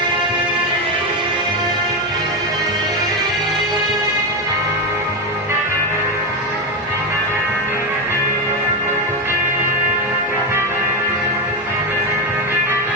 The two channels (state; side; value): normal; both; correlation 0.13